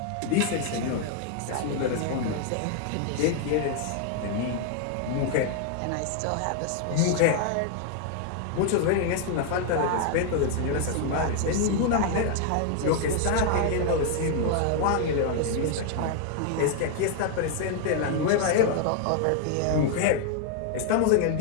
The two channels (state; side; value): different; both; correlation 0.00